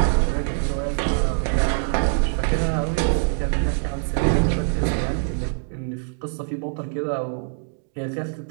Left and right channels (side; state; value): left; silent; digital silence